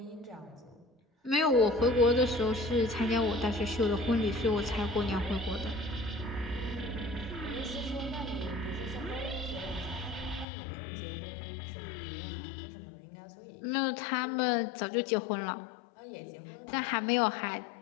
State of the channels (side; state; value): right; drops out; at 10.5 s